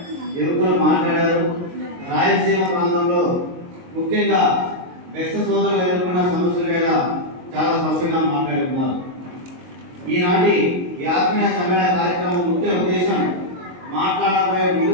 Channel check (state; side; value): late; left; 22 ms